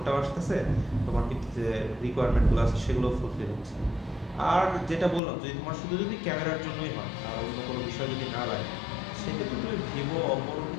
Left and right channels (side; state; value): right; drops out; at 5.2 s